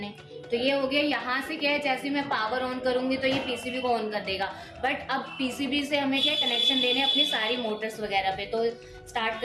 तो ये हो गया। यहाँ से क्या है, जैसे मैं पावर ऑन करूंगी तो ये पीसीबी को ऑन कर देगा, बट अब पीसीबी से हमें क्या कनेक्शन देने अपनी सारी मोटर्स वगैरह पे। तो स्टार्ट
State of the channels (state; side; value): identical; both; correlation 1.00